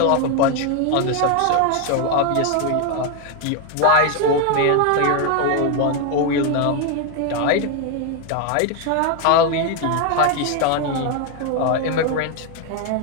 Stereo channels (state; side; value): different; both; correlation 0.01